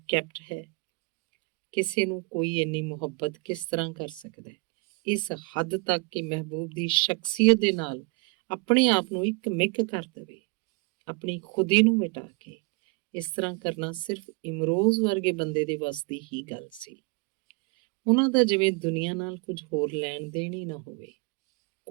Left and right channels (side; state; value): left; quieter; 29.1 dB